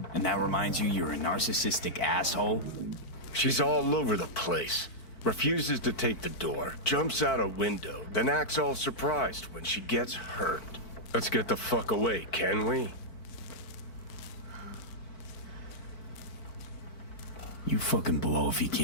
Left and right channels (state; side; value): late; right; 4.5 ms